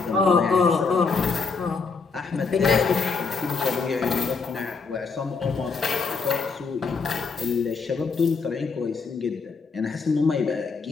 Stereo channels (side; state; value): right; quieter; 4.8 dB